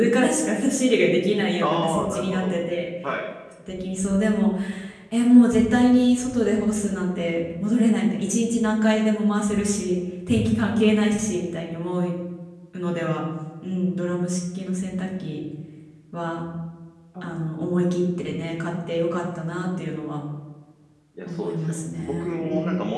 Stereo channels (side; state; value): both; identical; correlation 1.00